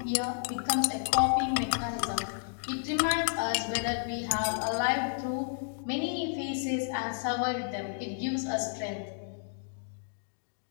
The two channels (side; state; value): right; silent; digital silence